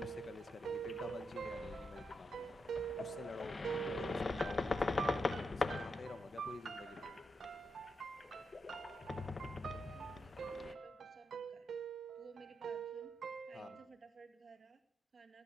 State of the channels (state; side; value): normal; both; correlation 0.84